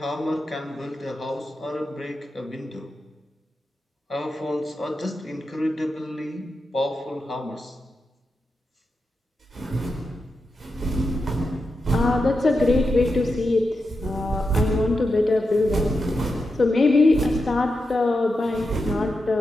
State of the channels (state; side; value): normal; both; correlation 0.88